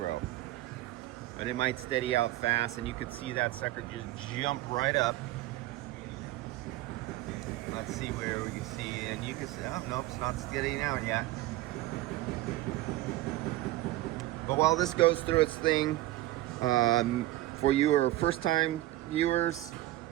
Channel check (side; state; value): left; quieter; 16.3 dB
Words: But it might steady out fast, and you could see that sucker just jump right up. Let's see where we can see, and you can see, oh, nope, it's not steadying out yet. But while this goes through its thing, for your first-time viewers,